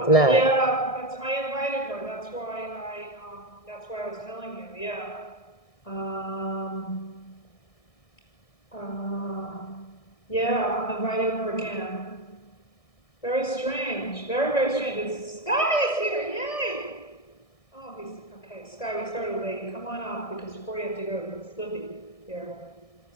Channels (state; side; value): late; right; 1.6 ms